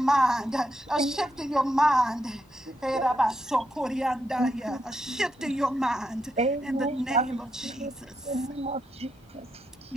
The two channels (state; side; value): normal; both; correlation 0.82